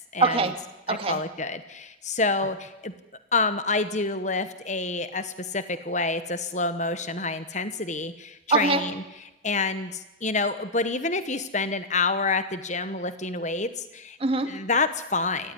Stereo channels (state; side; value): normal; both; correlation -0.08